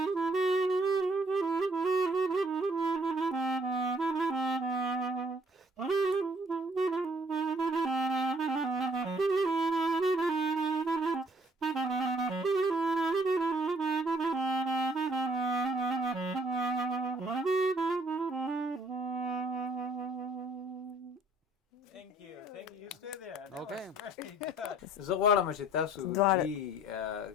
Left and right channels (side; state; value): both; normal; correlation 0.61